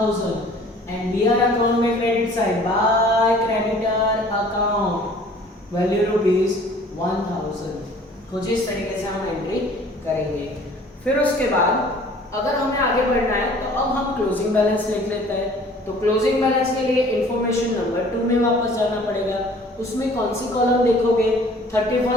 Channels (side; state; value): both; normal; correlation 0.51